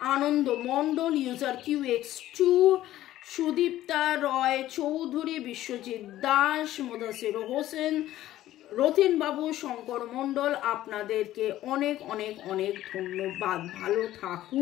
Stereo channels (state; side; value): quieter; right; 14.1 dB